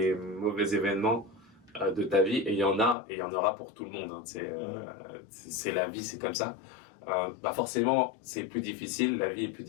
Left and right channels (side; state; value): right; drops out; at 3.0 s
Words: mauvais événements de ta vie, et il y en a, et il y en aura pour tout le monde, hein, c'est la vie, c'est comme ça. Forcément, c'est plus difficile, la vie est plus